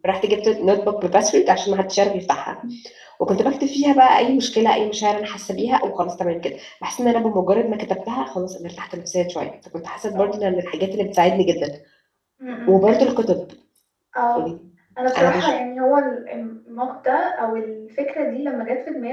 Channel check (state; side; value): identical; both; correlation 1.00